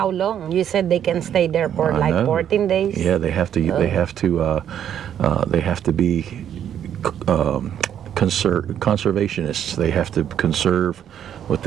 long? You said they can stay there for I like know. 14 days. Yeah, they have to. They have to be conservationists. They have to conserve what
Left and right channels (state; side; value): quieter; left; 9.7 dB